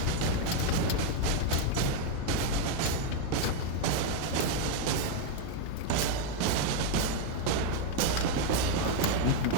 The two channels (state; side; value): different; both; correlation 0.01